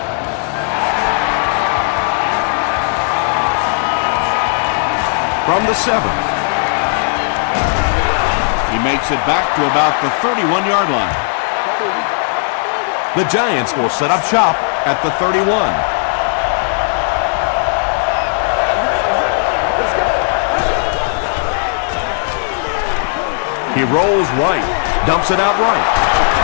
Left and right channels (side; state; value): right; silent; digital silence